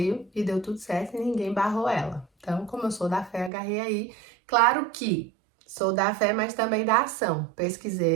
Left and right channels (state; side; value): drops out; left; at 3.5 s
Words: e deu tudo certo e ninguém barrou ela. Então, como eu sou da fé, agarrei aí. Claro que sou da fé, mas também da ação.